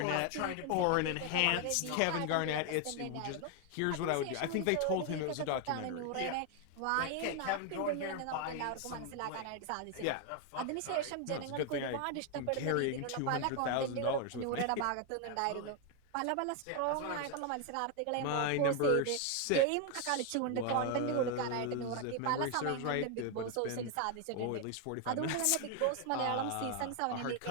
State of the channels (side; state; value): both; different; correlation 0.01